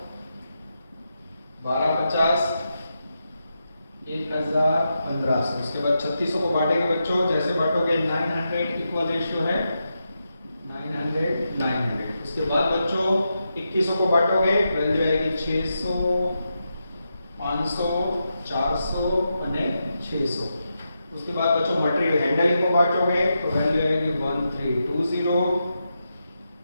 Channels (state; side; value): inverted; both; correlation -0.87